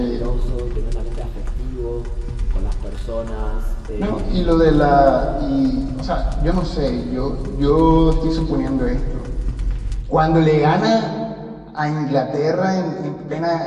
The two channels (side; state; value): both; identical; correlation 1.00